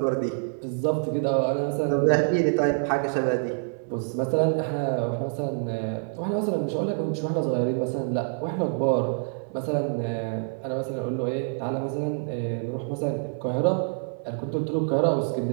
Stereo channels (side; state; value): left; silent; 57 dB below the other